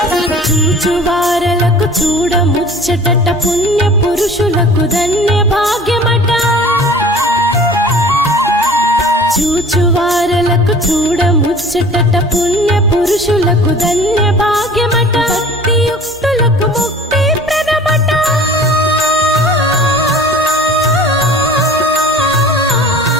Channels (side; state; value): both; normal; correlation 0.45